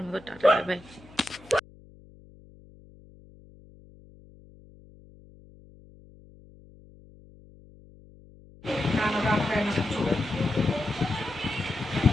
মতো টাটা বাই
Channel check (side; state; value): left; noise; hum, 24 dB below the sound